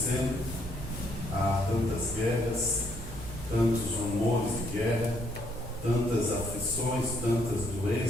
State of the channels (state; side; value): noise; right; hum, 13 dB below the sound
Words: há tantas guerras, tantos rumores de guerra, tantas aflições, tantas